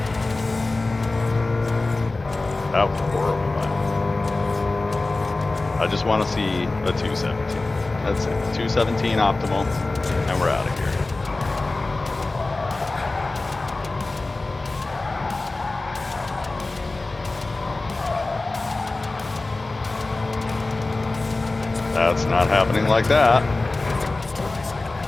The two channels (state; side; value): quieter; right; 3.2 dB